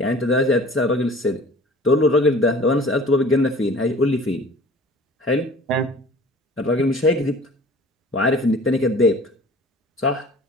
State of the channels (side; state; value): both; normal; correlation 0.47